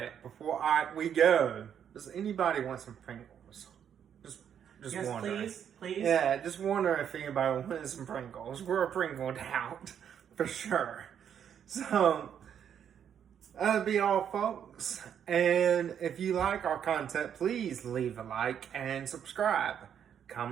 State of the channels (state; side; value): quieter; left; 8.7 dB